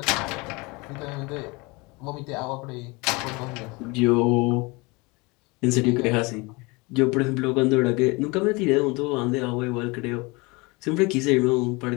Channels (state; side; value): quieter; right; 26.1 dB